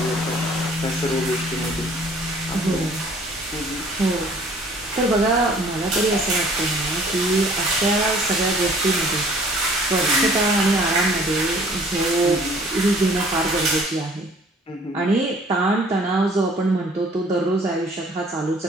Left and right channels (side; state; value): both; normal; correlation 0.54